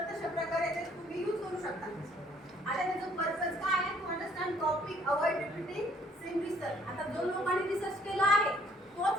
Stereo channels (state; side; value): normal; both; correlation 0.62